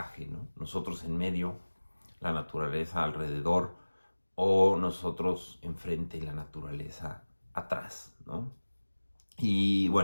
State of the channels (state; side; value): inverted; both; correlation -1.00